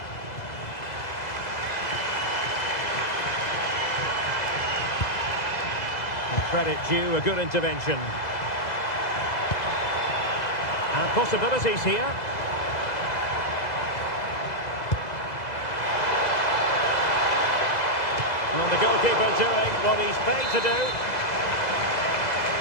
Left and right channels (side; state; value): right; late; 2.0 ms